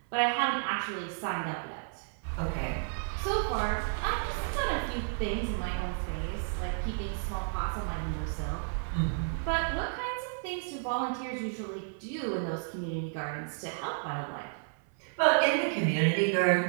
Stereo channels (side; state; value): left; silent; 57 dB below the other